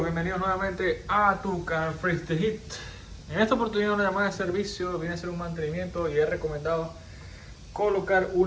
bienvenidos nuevamente a tu canal Freeze the Hit. En esta oportunidad una llamada de servicio viene a ser un mantenimiento y he recomendado colocar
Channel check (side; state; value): both; identical; correlation 1.00